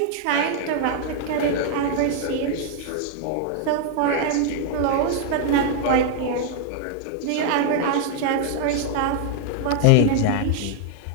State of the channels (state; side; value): different; both; correlation 0.00